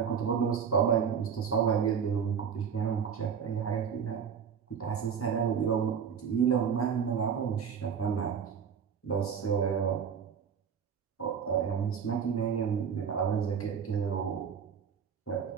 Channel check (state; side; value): quieter; left; 7.2 dB